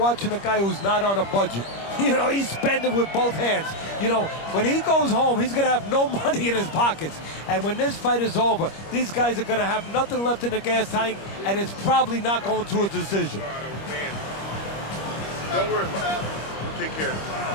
a guy who's not on a budget. You know, he's spending with both hands. You know, when he goes home, he's going to have no money in his pockets. And when this fight is over, these guys are going to have nothing left in the gas tank, and it's probably not going to a decision. Don't worry about it. We'll take care of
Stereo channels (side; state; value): right; late; 25 ms